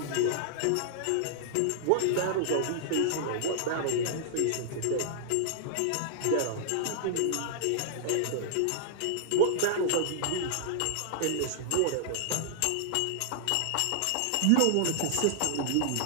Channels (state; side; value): different; both; correlation -0.01